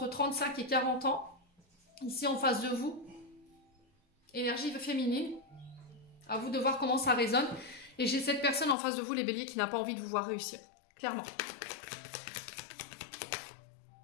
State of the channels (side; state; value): right; drops out; at 8.8 s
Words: 35 et 40 ans, ici en face de vous. Énergie féminine. À vous de voir comment ça résonne. Et j'ai cette personne en face de vous, les béliers, qui n'a pas envie de vous voir réussir. Clairement.